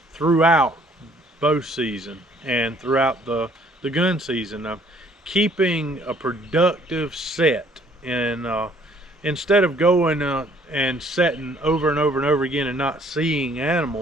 throughout bow season and throughout the gun season? I'm keeping a productive set, and instead of going and setting over and over and over again and not seeing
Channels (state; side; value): normal; both; correlation 0.61